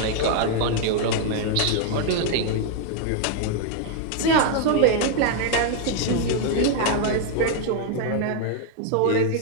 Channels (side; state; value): both; different; correlation 0.00